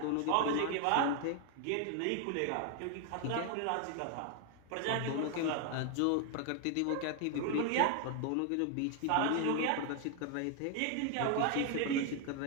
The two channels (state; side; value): different; both; correlation 0.00